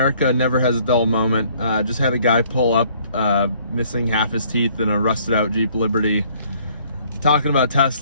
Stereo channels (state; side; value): inverted; both; correlation -0.60